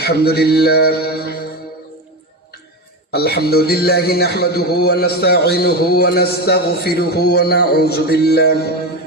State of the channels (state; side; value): normal; both; correlation 0.18